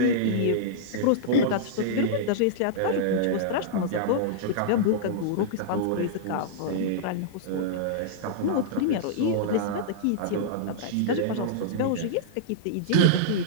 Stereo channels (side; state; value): both; different; correlation -0.02